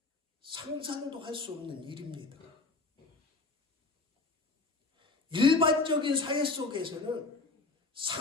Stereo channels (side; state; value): right; quieter; 3.5 dB